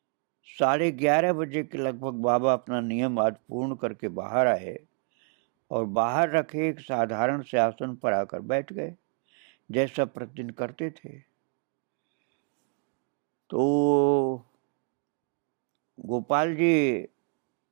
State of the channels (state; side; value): quieter; left; 38.8 dB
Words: 11:30 बजे के लगभग बाबा अपना नियम आज पूर्ण करके बाहर आए और बाहर रखे एक साधारण से आसन पर आकर बैठ गए, जैसा प्रतिदिन करते थे। तो गोपाल जी